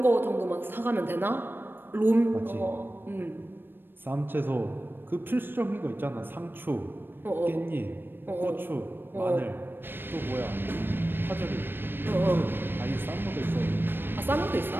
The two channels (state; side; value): late; left; 0.098 ms